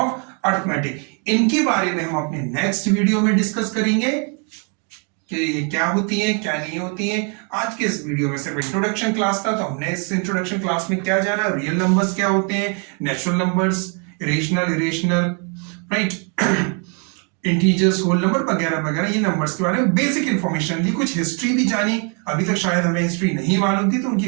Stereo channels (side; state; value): left; quieter; 38.0 dB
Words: अर्थमेटिक। इनके बारे में हम अपने नेक्स्ट वीडियो में डिस्कस करेंगे कि ये क्या होती है, क्या नहीं होती है। आज के इस वीडियो में सिर्फ इंट्रोडक्शन क्लास था, तो हमने इस इंट्रोडक्शन क्लास में क्या जाना, रियल नंबर्स क्या होते हैं, natural numbers, rational, irrational, right, integers, whole number वगैरह वगैरह, ये नंबर्स के बारे में बेसिक इंफॉर्मेशन ली। कुछ हिस्ट्री भी जानी, अभी तक शायद हमें हिस्ट्री नहीं मालूम थी, तो